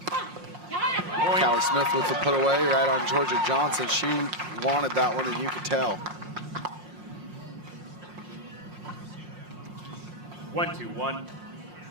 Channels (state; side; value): late; left; 5.6 ms